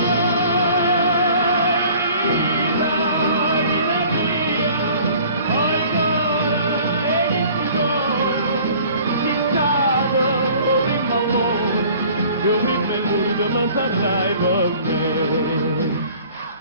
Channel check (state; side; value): inverted; both; correlation -0.50